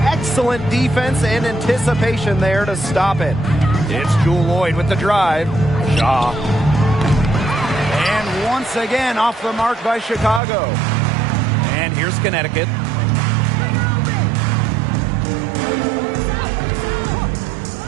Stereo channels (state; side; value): drops out; left; at 10.4 s